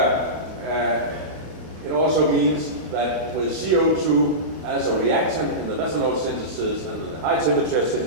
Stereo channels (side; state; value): left; late; 32 ms